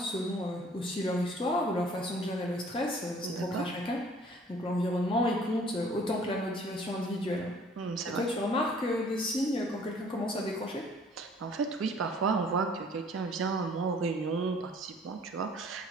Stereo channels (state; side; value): normal; both; correlation 0.55